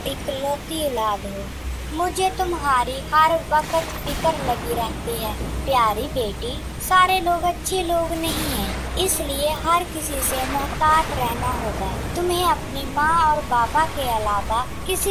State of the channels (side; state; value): both; identical; correlation 1.00